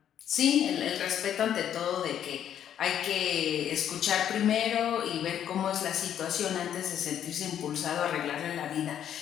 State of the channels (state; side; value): quieter; right; 9.9 dB